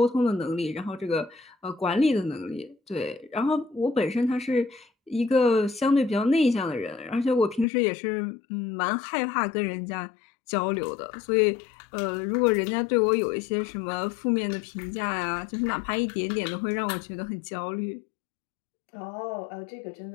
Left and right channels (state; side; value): drops out; right; at 7.7 s